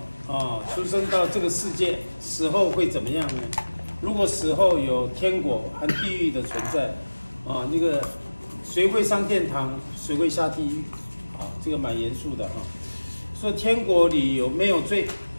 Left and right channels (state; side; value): inverted; both; correlation -1.00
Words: 出生到这个世界，死后会怎么样呢？如果死后有天国和地狱的存在，那个谁会上天堂，谁会下地狱？这个蛮严肃的哈。说天国里有没有罪，